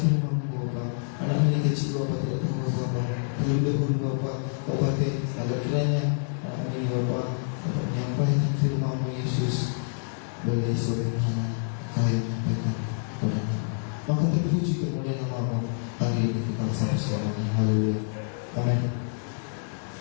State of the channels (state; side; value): silent; right; digital silence